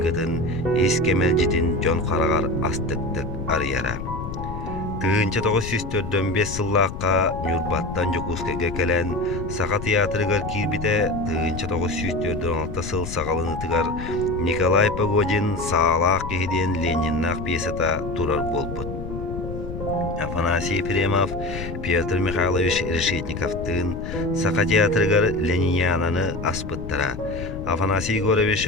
ес кемел житін жон қарағар астықтық арияра. Тыынча 945 сыллаққа Нюрбаттан Жокускайға кәлән Сақа театрыгар кирбите тыынча 946 сыл сағалынытыгар Николай Погодин сағалақ кехиден Лениннақ пьесата турар болбыт. Афанасий Ефремов Петр Михайлович Решетниковтын Сақа театрыгар Ленинянаны аспыттара. Афанасий Егорович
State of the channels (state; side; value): noise; left; rumble, 8 dB below the sound